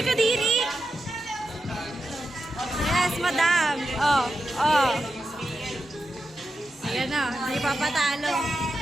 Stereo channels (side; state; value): both; normal; correlation 0.89